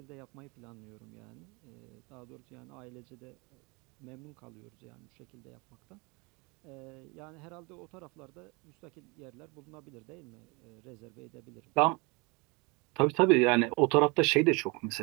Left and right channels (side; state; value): left; quieter; 28.0 dB